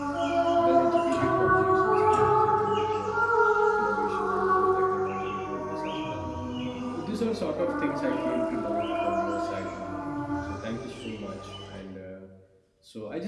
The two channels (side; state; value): both; identical; correlation 1.00